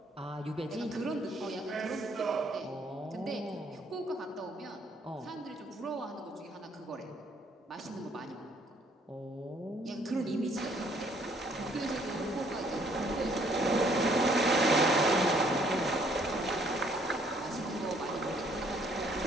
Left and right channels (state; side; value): normal; both; correlation 0.64